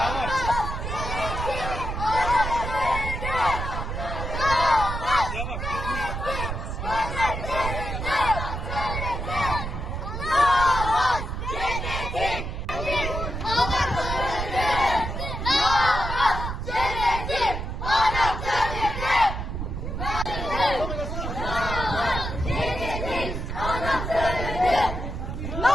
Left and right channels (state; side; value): noise; right; rumble, 4 dB below the sound